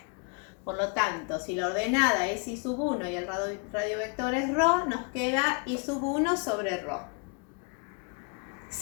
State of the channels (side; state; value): right; quieter; 35.6 dB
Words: Por lo tanto, si la ordenada es y sub 1 y el radio vector es ρ, nos queda y sub 1 sobre ρ.